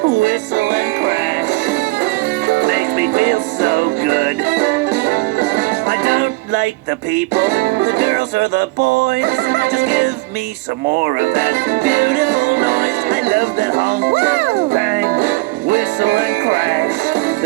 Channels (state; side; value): quieter; left; 23.3 dB